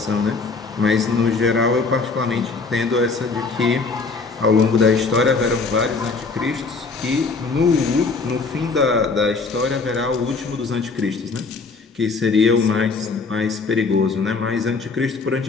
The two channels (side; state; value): right; quieter; 4.3 dB